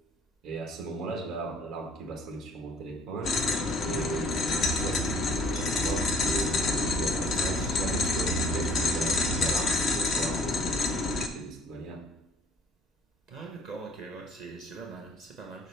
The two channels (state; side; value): normal; both; correlation 0.54